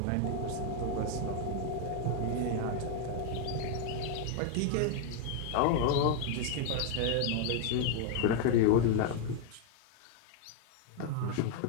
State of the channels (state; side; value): different; both; correlation 0.00